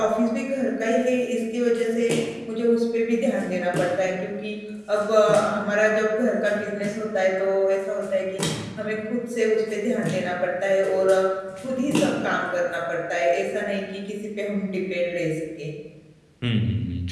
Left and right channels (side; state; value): both; identical; correlation 1.00